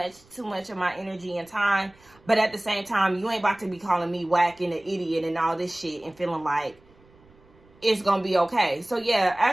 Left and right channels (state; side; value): noise; right; rumble, 29 dB below the sound